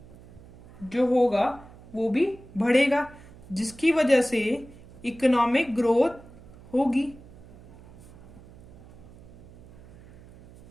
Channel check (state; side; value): noise; right; hum, 21 dB below the sound